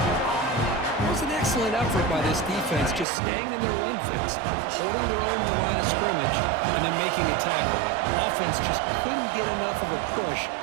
It was an excellent effort by this defense, just staying in their run fits, holding their own at the line of scrimmage, and then making a tackle. Offense just couldn't get enough of a push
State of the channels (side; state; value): left; drops out; at 3.1 s